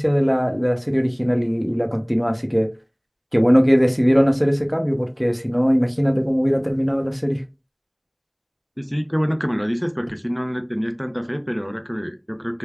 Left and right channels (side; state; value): both; identical; correlation 1.00